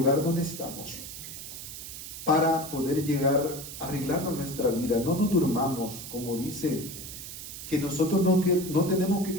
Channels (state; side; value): noise; right; hiss, 10 dB below the sound